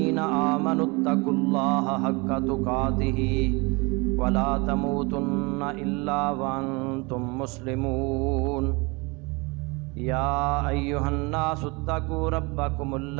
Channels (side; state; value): left; quieter; 27.3 dB